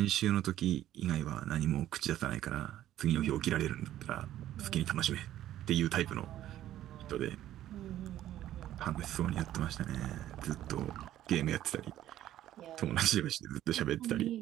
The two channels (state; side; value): quieter; left; 12.8 dB